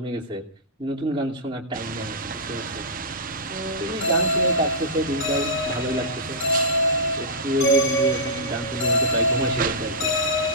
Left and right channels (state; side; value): normal; both; correlation -0.15